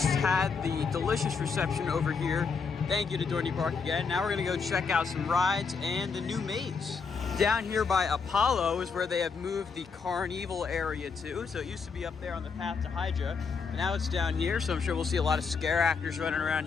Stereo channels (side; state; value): right; quieter; 5.3 dB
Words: had the delicious reception over here. Thank you to Dorney Park again. Now we're gonna go check out some rides and the new maze. Down here by Apollo is where they have moved the Carnival area to. So it used to be up there on the path to Hydra, but now it's down here. So I'm sure we'll see a lot of scare actors running around